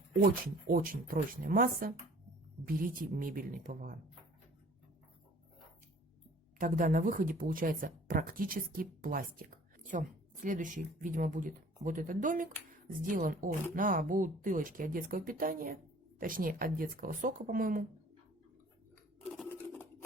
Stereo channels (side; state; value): both; normal; correlation 0.51